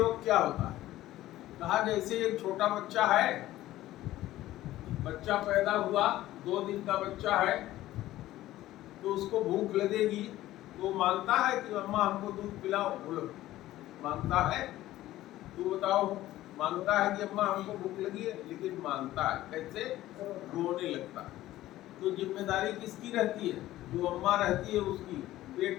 क्या होता है? कहा जैसे एक छोटा बच्चा है, बच्चा पैदा हुआ, 2 दिन का बच्चा है, तो उसको भूख लगेगी तो मांगता है कि अम्मा हमको दूध पिलाओ। बोलो मांगता है? तू बताओ। मांगता है कि अम्मा हमको भूख लगी है, लेकिन मांगता है कैसे? रोने लगता है। तो जिम्मेदारी किसकी रहती है? जो अम्मा रहती है उसकी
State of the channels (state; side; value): quieter; right; 15.2 dB